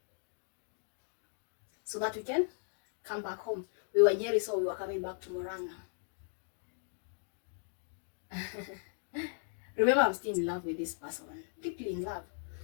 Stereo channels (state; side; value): silent; right; digital silence